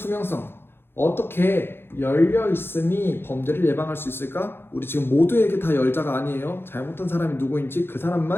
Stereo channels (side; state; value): right; late; 0.11 ms